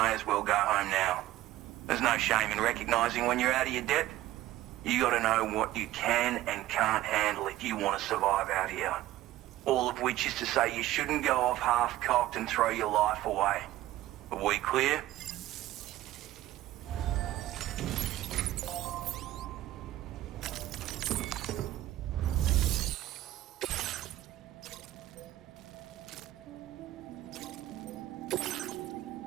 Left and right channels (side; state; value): left; quieter; 15.1 dB